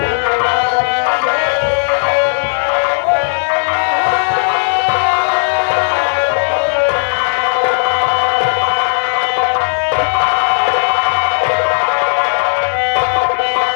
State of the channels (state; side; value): silent; right; digital silence